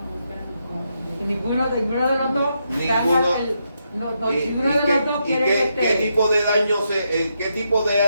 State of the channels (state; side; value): inverted; both; correlation -0.81